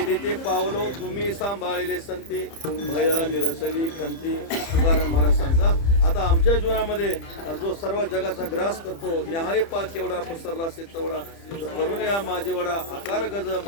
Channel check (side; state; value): right; late; 30 ms